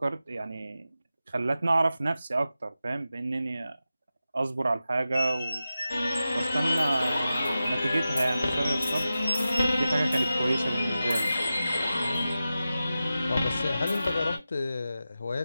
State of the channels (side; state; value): both; inverted; correlation -0.92